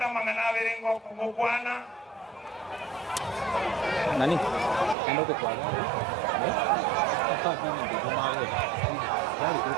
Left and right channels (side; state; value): left; drops out; at 5.0 s